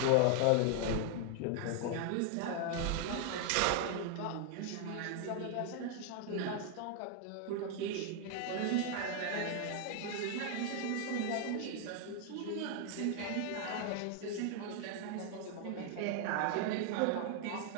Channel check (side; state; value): both; different; correlation 0.00